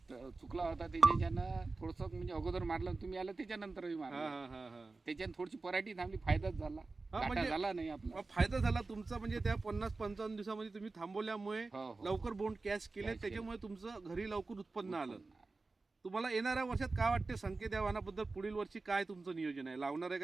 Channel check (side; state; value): left; quieter; 3.6 dB